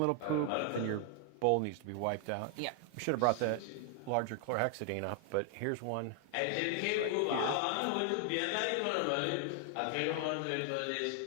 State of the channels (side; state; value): both; different; correlation 0.00